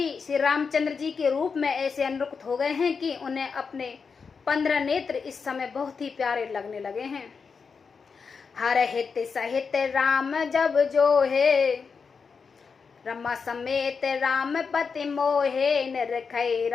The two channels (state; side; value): quieter; right; 5.4 dB